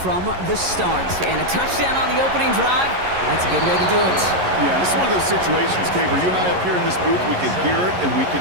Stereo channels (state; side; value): late; left; 11 ms